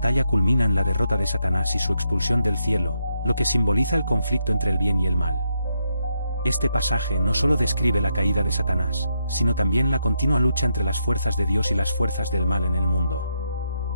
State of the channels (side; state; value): both; inverted; correlation -0.80